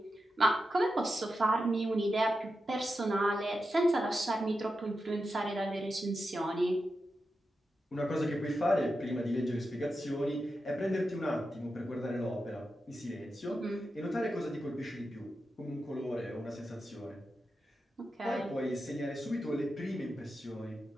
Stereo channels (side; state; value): both; normal; correlation 0.89